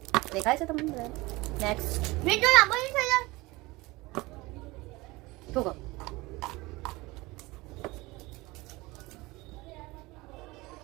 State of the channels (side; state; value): left; quieter; 21.8 dB